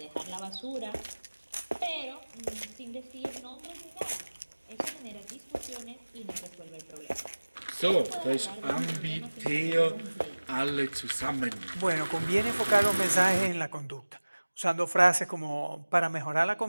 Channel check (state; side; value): inverted; both; correlation -1.00